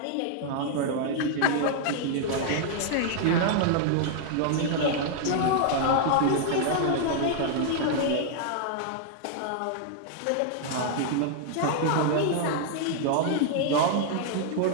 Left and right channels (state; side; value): different; both; correlation -0.01